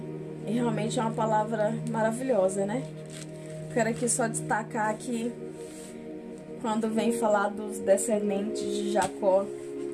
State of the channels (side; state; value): both; identical; correlation 1.00